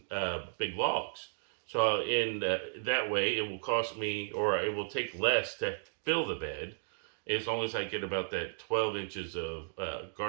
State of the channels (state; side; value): silent; left; digital silence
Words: big logs. So in that way, it will cost me, or it will take less to fill the bed, as long as I get about that 12 inches of